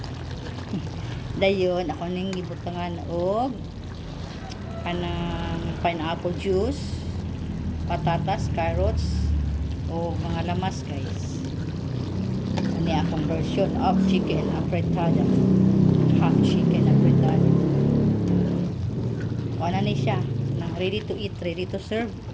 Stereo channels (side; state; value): both; identical; correlation 1.00